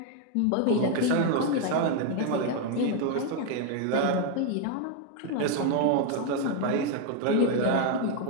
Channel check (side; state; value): both; different; correlation 0.01